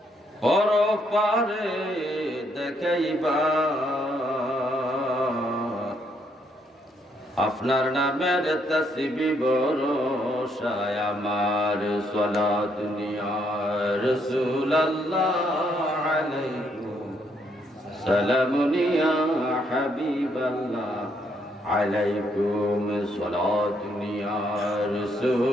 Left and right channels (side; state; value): both; normal; correlation 0.72